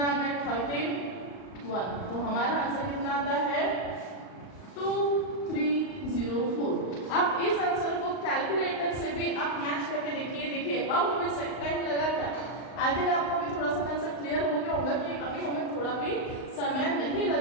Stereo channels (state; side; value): late; right; 38 ms